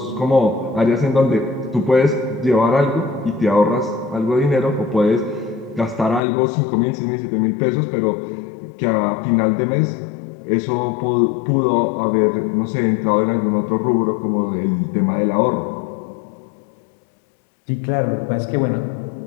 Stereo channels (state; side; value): drops out; right; at 6.2 s